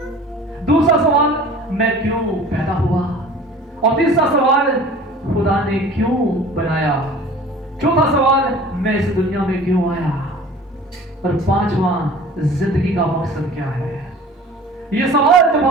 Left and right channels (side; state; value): both; normal; correlation 0.44